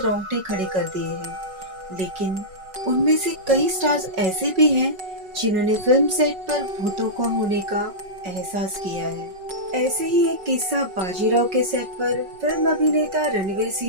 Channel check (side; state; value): left; late; 5.3 ms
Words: खड़े कर दिए हैं। लेकिन उनमें से कई स्टार्स ऐसे भी हैं जिन्होंने फिल्म सेट पर भूतों का होने का एहसास किया है। ऐसे ही एक किस्सा बाजीराव के सेट पर फिल्म अभिनेता रणवीर